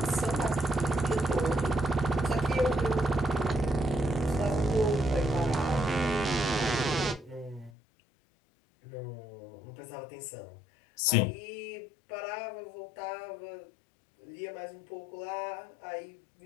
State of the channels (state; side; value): drops out; right; at 7.7 s